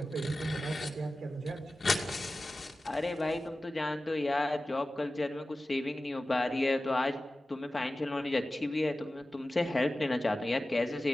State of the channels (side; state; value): both; normal; correlation 0.95